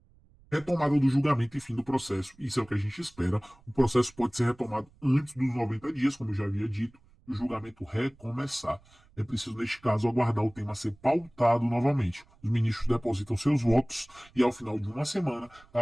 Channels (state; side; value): noise; right; rumble, 29 dB below the sound